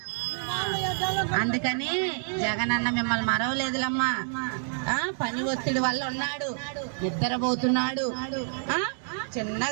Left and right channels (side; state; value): left; silent; digital silence